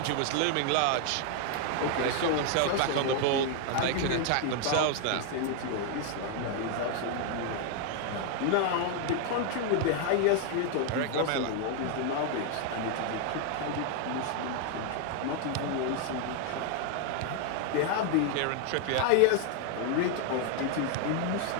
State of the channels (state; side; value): different; both; correlation 0.00